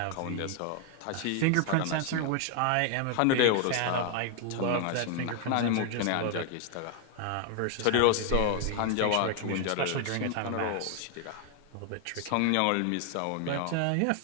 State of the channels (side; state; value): both; different; correlation 0.00